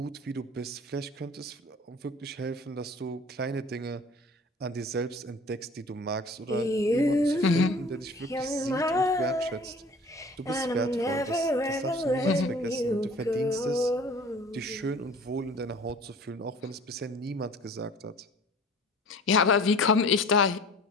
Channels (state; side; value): normal; both; correlation 0.47